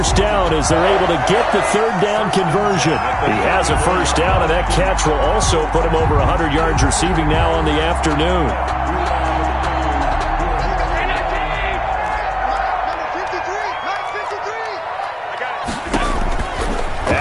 down as they're able to get the third down conversion. He has a first down, and that catch will also put him over 100 yards receiving now on the afternoon.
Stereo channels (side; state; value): both; identical; correlation 1.00